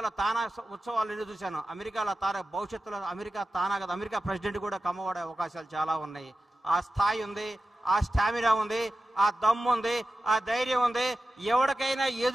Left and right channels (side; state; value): both; normal; correlation 0.94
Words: తానా ఉత్సవాలు ఎదురు చూశాను. అమెరికాలో భవిష్యత్తులో అమెరికా ప్రెసిడెంట్ కూడా కమ్మవాడే అవకాశాలు చాలా ఉన్నాయి. ఆ స్థాయి ఉంది, ఆ స్టామినా ఉంది, ఆ దమ్ము ఉంది, ఆ ధైర్యం ఉంది. ఎవరికైనా